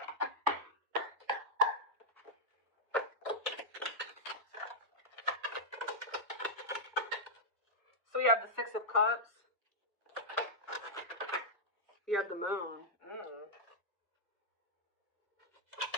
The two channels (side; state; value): both; normal; correlation -0.08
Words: So you have the 6 of Cups. You have the Moon.